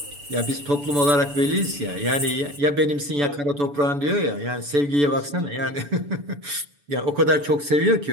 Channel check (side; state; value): left; late; 6.9 ms